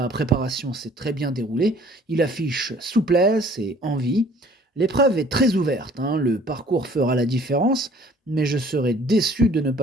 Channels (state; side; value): normal; both; correlation 0.54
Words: préparation s'est très bien déroulée. Il affiche souplesse et envie. L'épreuve est très ouverte, le parcours fera la différence, mais je serais déçu de ne